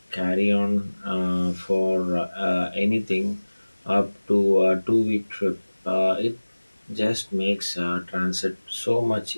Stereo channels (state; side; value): inverted; both; correlation -1.00